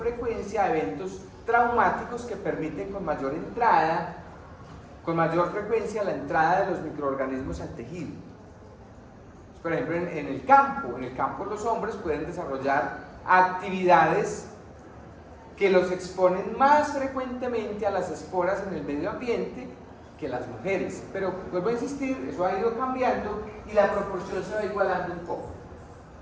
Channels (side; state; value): both; identical; correlation 1.00